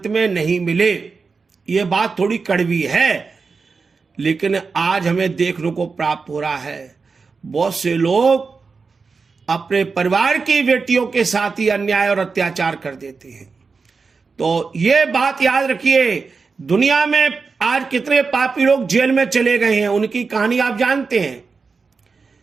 में नहीं मिले। ये बात थोड़ी कड़वी है, लेकिन आज हमें देखने को प्राप्त हो रहा है। बहुत से लोग अपने परिवार की बेटियों के साथ ही अन्याय और अत्याचार कर देते हैं। तो ये बात याद रखिए, दुनिया में आज कितने पापी लोग जेल में चले गए हैं, उनकी कहानी आप जानते हैं।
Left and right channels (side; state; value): left; quieter; 4.7 dB